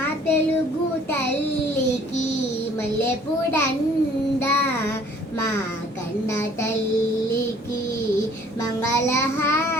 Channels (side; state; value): both; normal; correlation 0.56